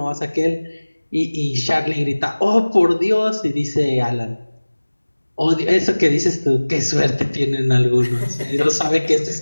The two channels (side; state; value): both; inverted; correlation -1.00